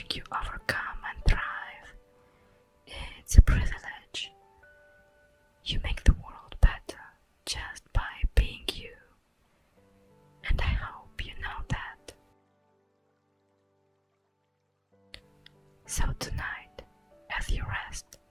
you overcome and thrive. It's a privilege. You make the world better just by being you, and I hope you know that. So tonight, as you rest,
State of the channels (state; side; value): identical; both; correlation 1.00